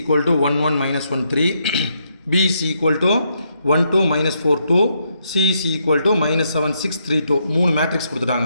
to 1 1 minus 1 3 b is equal to 1 2 minus 4 2 c is equal to minus 7 6 3 2 மூணு மேட்ரிக்ஸ்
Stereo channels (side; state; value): both; inverted; correlation -0.78